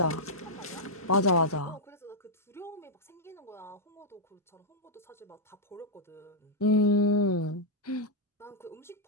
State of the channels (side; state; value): both; normal; correlation -0.05